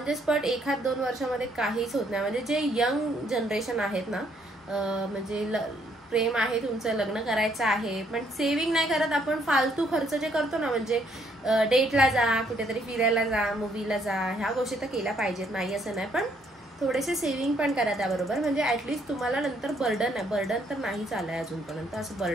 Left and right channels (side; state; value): both; normal; correlation 0.69